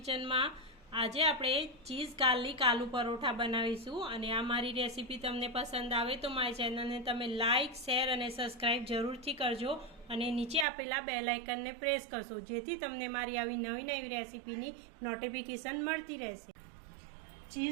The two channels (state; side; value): drops out; left; at 10.7 s